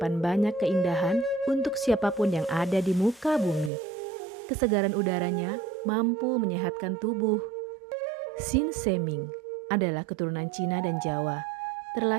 banyak keindahan untuk siapapun yang ada di muka bumi. Kesegaran udaranya mampu menyehatkan tubuh. Sin Seming adalah keturunan Cina dan Jawa,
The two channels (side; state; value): left; drops out; at 3.7 s